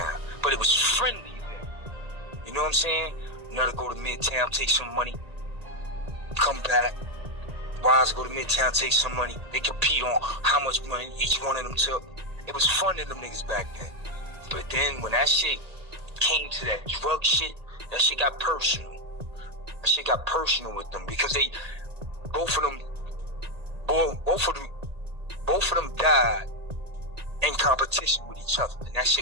but it was friendly then. You know what I'm saying? Another go to Midtown, take some money, come back. Wise go to Midtown, take some money. They compete on how much money each one of them took. It was fun to them niggas back then. But then when that shit came to that drug shit, that shit got personal. That shit got personal with them because they, both of them died in competition with each other. And that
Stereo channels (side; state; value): left; late; 1.9 ms